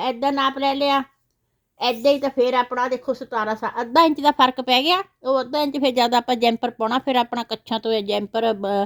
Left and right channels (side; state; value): both; identical; correlation 1.00